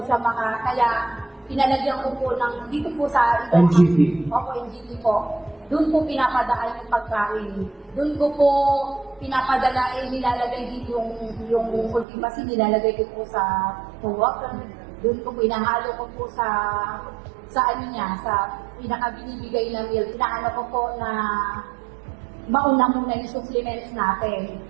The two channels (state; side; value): drops out; left; at 12.1 s